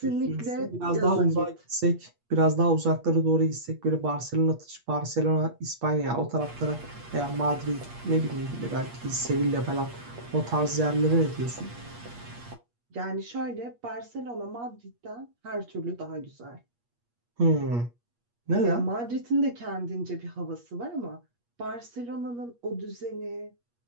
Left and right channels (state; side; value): late; left; 8.4 ms